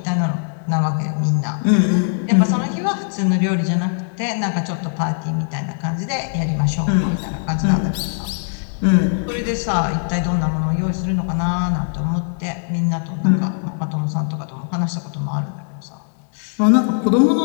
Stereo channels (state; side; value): silent; right; 66 dB below the other